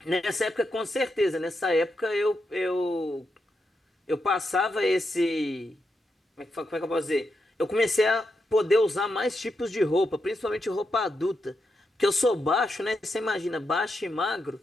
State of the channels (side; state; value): both; normal; correlation 0.85